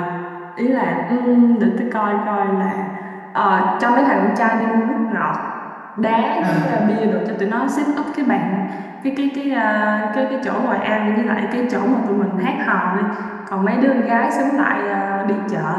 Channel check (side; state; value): both; identical; correlation 1.00